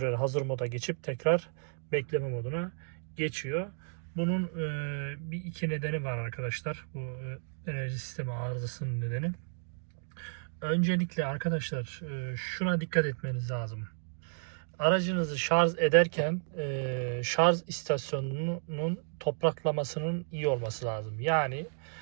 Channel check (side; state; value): left; silent; digital silence